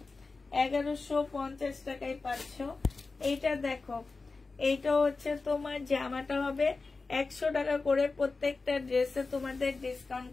1150 টাকায় পাচ্ছ। এইটা দেখো, এইটা হচ্ছে তোমার জামাটা হবে 100 টাকা করে, প্রত্যেকটা ড্রেসে তোমাদের ডিসকাউন্ট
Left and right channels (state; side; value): quieter; right; 3.9 dB